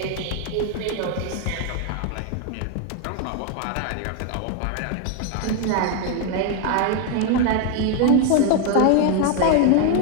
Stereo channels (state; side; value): different; both; correlation 0.01